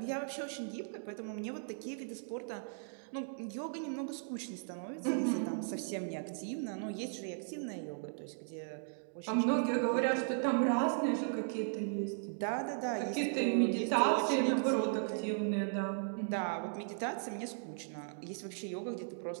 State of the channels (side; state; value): left; silent; digital silence